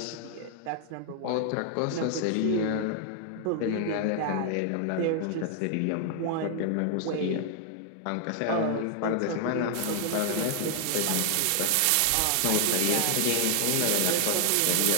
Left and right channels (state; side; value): different; both; correlation 0.00